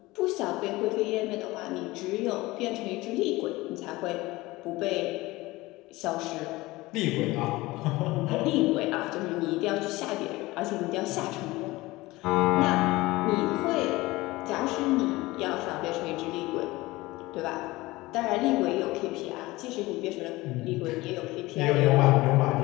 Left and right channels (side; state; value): right; quieter; 20.1 dB